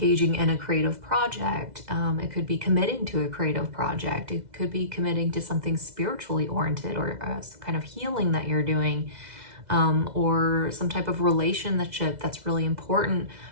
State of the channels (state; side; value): late; left; 2.0 ms